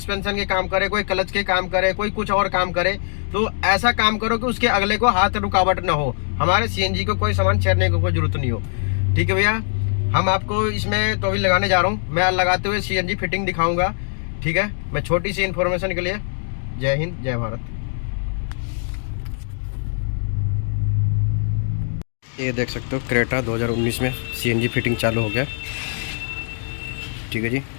के काम करे, कोई क्लच के काम करे, कोई कुछ और काम करे, तो ऐसा काम करो कि उसके अगले को हाथ रुकावट ना हो। हमारे सीएनजी को कोई सामान छेड़ने को कोई जरूरत नहीं हो। ठीक है भैया। हम आपको इसमें तो अभी लगाने जा रहा हूँ, मैं लगाते हुए सीएनजी फिटिंग दिखाऊंगा। ठीक है। मैं छोटी सी इन्फॉर्मेशन के लिए, जय हिंद जय भारत। ये देख सकते हो क्रेटा 2019 में सीएनजी फिटिंग चालू हो गया। ठीक है जी।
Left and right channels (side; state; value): right; silent; digital silence